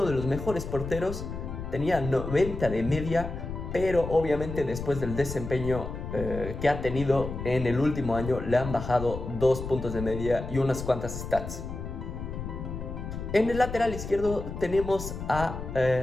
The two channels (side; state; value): left; noise; rumble, 7 dB below the sound